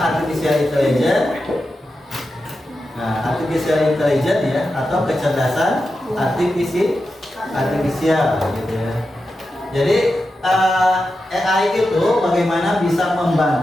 intelligence. Nah, artificial intelligence, ya, atau kecerdasan artifisial, gitu, ya. Jadi AI itu bagaimana bisa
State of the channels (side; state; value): both; normal; correlation 0.90